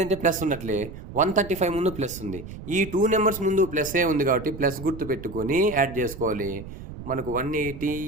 ప్లస్ ఉన్నట్లే 135 ముందు ప్లస్ ఉంది. ఈ 2 నెంబర్స్ ముందు ప్లస్ఏ ఉంది కాబట్టి ప్లస్ గుర్తు పెట్టుకొని యాడ్ చేసుకోవాలి. మనకు 180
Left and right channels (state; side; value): noise; right; rumble, 12 dB below the sound